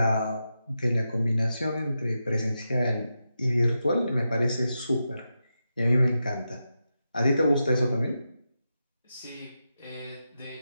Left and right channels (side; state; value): both; inverted; correlation -0.88